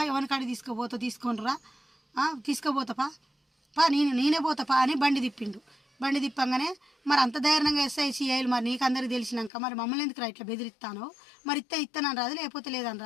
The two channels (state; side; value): drops out; right; at 9.5 s